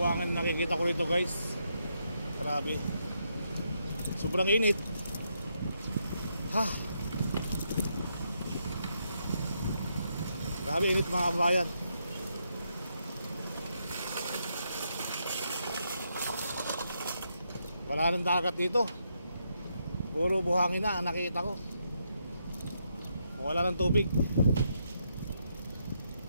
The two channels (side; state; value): both; inverted; correlation -0.79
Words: nakikita ko rito guys. Grabe. Sobrang init. Grabe init mga kabayan. Wala nang dagat dito. Puro buhangin na ang nakikita ko. Wala nang tubig.